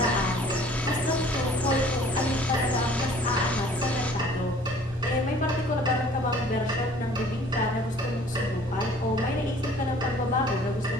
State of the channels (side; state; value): both; normal; correlation 0.52